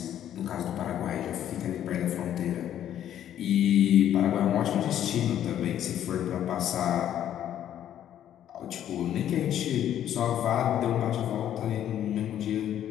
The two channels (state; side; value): quieter; right; 10.9 dB